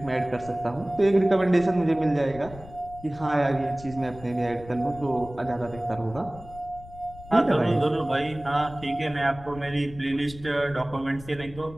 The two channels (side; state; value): left; noise; rumble, 17 dB below the sound